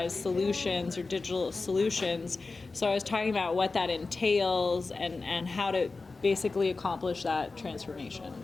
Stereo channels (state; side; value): quieter; right; 3.8 dB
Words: solutions or digital solutions. So I was talking about what that entails and how to basically accomplish that transformation.